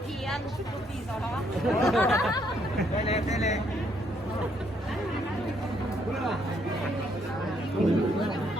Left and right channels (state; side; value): normal; both; correlation 0.71